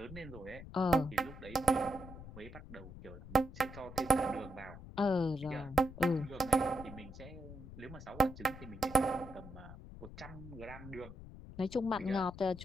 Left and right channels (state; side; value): noise; left; rumble, 14 dB below the sound